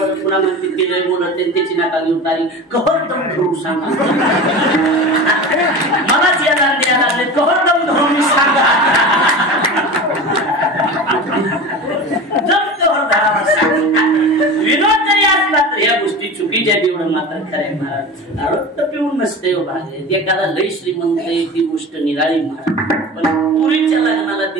पुन्हा म्हणते ते लय बोलत त्याची नाका घेऊन तारी कहर दम धरून सांगा. मलाच यायला द्यायला लागले कहर दम धरून सांगा. विनोद जरी असला तर या गोष्टी चुकीच्या एवढं मात्र खरंय महाराज. आरोग्य पिऊन नसते भाग एखादा लय श्रीमंत आहे ती गोष्ट निराळी महाराज. पण पुरीच्या लग्नाला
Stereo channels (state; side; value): normal; both; correlation 0.31